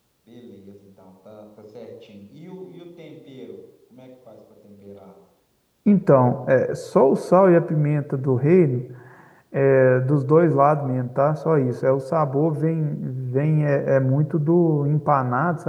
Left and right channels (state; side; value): identical; both; correlation 1.00